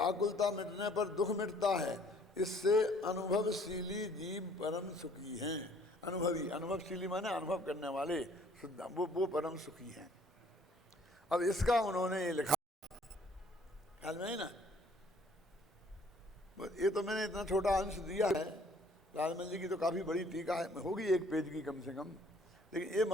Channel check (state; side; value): normal; both; correlation 0.58